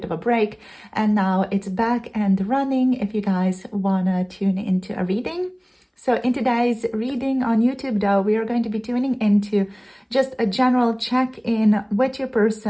of a break, and now it's back and running if you guys wanna tune into a reading. So in today's reading on YouTube though, we are going to be tuning into just a general check-in with your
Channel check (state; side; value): identical; both; correlation 1.00